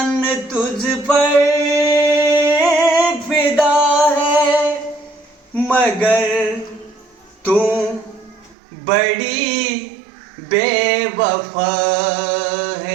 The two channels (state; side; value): drops out; left; at 8.6 s